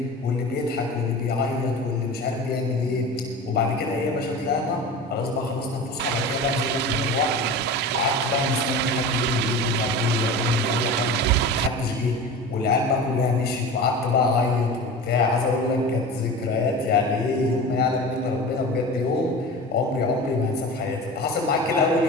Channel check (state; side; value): normal; both; correlation 0.32